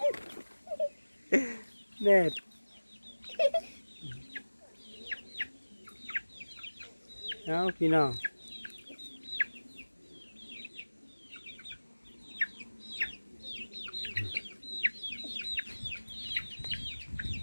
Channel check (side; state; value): both; inverted; correlation -1.00